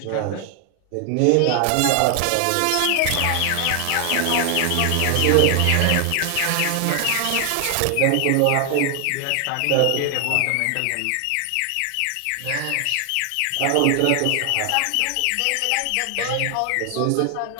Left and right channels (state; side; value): different; both; correlation 0.00